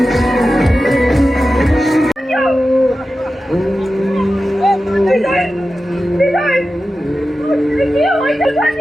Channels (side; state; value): both; normal; correlation 0.93